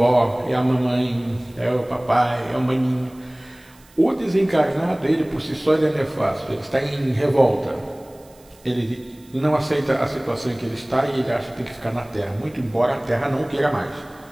é a mamãe, é o papai, é o maninho. O desencarnado, ele por si só, ele é nefasto, ele está em revolta. Ele não aceita a situação em que ele está e ele acha que tem que ficar na Terra, muito embora a Terra não queira mais.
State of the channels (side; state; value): right; noise; hiss, 28 dB below the sound